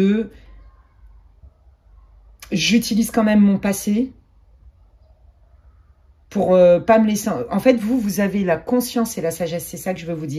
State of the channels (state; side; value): identical; both; correlation 1.00